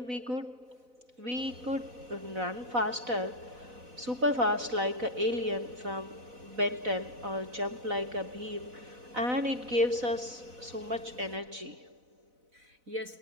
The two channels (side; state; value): left; late; 4.0 ms